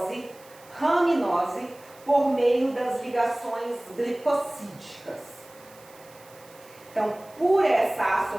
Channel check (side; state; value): right; noise; hiss, 25 dB below the sound